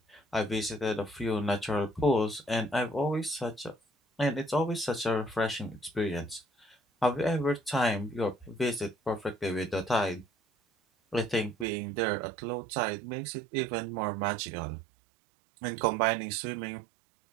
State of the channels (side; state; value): left; drops out; at 11.7 s